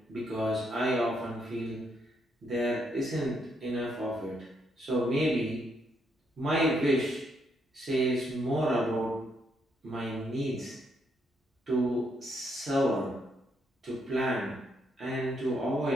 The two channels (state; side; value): normal; both; correlation 0.75